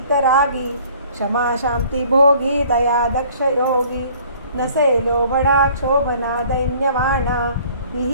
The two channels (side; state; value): both; inverted; correlation -0.54